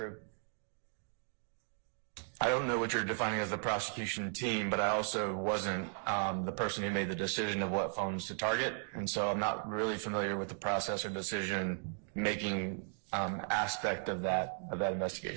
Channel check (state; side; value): silent; left; 54 dB below the other